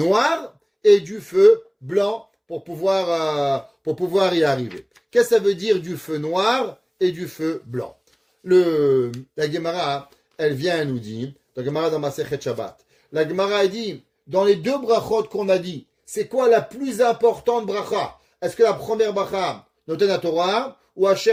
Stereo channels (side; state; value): both; identical; correlation 1.00